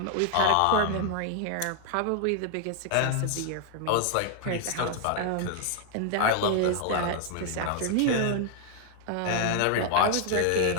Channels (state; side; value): different; both; correlation 0.00